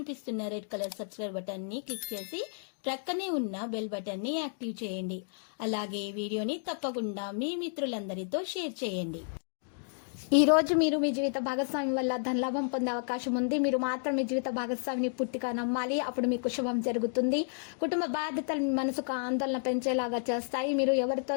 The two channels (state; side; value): silent; right; digital silence